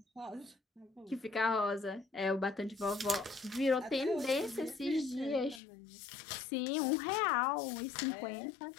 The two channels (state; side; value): drops out; right; at 5.6 s